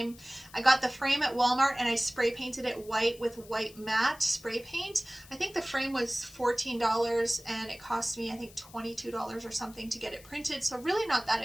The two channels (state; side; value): noise; left; hiss, 21 dB below the sound